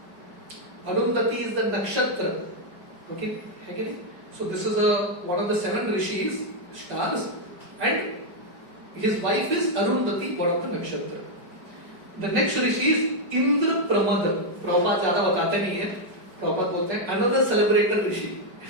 Arundhati is the nakshatra, okay, है कि नहीं? So this is one of the 7 rishis stars and his wife is Arundhati, one of the nakshatra. The next rishi is Indrapramada. Prabhupada ज्यादा बताते नहीं है, प्रभुपाद बोलते हैं अनदर सेलिब्रेटेड ऋषि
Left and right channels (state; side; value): late; left; 5.4 ms